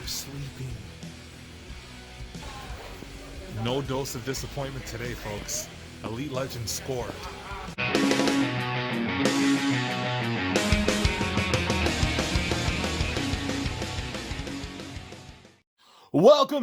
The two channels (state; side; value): identical; both; correlation 1.00